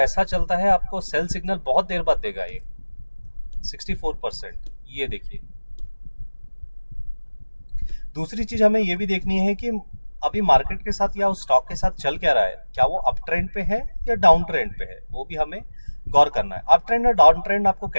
चलता है आपको सेल सिग्नल बहुत देर बाद देगा ये 64%। ये देखिए दूसरी चीज हमें ये भी देखनी है कि अभी मार्केट के साथ या उस स्टॉक के साथ चल क्या रहा है, क्या वो अप ट्रेंड पे है या डाउन ट्रेंड पे है, वो भी हमें गौर करना है। अप ट्रेंड और डाउन ट्रेंड आपको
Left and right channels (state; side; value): inverted; both; correlation -1.00